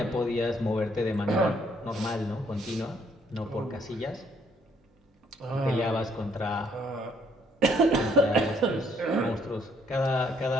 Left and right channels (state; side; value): normal; both; correlation 0.67